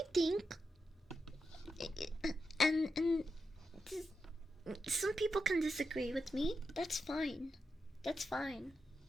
think, and some people can disagree with me. That's fine. That's fine.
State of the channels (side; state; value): both; normal; correlation 0.88